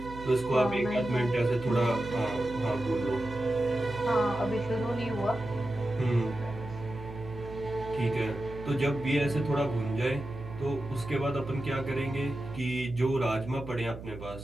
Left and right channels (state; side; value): noise; right; hum, 12 dB below the sound